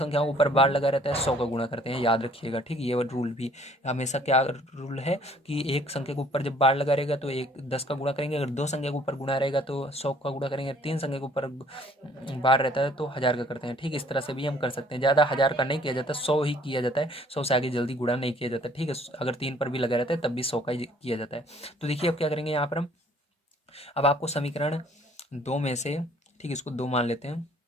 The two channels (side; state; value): both; normal; correlation 0.58